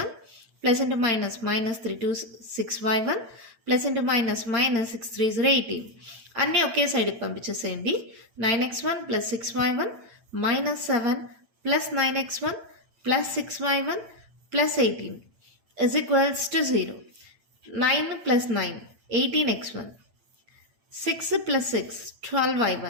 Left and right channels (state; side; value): late; left; 8.9 ms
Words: plus into minus minus 3 2 6y1 plus into minus minus 6 3s 18. అన్నీ ఒకే సైడ్కి పంపించేసేయండి. 9x1 plus 6y1 minus 7 plus 9x1 plus 6y1 plus 18 is equals to 0. 9 plus 9 18x1 6 plus 6